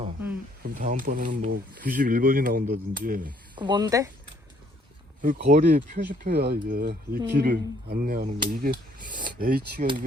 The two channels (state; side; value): normal; both; correlation 0.65